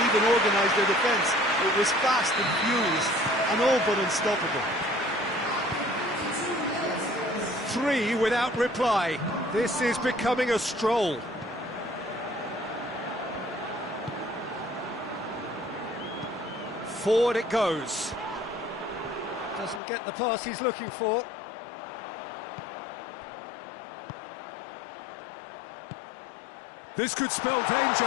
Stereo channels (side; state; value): right; drops out; at 19.8 s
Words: even organise their defence. It was fast and furious, and all but unstoppable. 3 without reply. This is becoming a stroll. Forward it goes. Doesn't get the pass he's looking for. This could spell